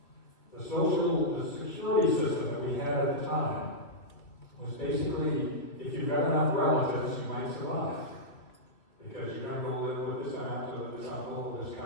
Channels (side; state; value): right; late; 2.8 ms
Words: The security system that we had at the time was basically, if you've got enough relatives, you might survive. Because you're going to go live with this aunt or this uncle or this